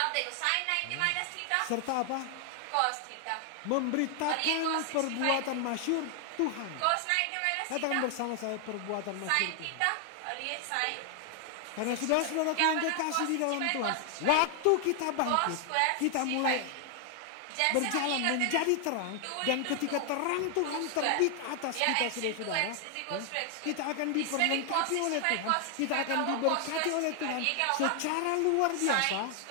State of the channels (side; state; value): both; different; correlation 0.00